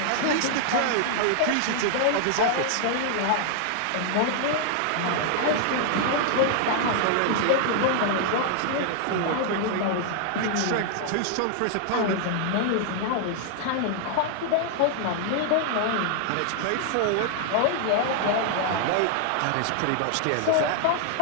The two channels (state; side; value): different; both; correlation 0.00